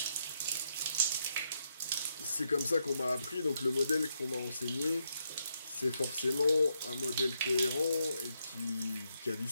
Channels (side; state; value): both; inverted; correlation -0.79